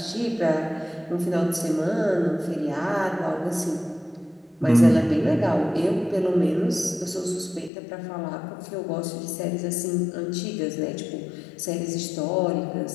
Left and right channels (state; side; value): drops out; right; at 7.7 s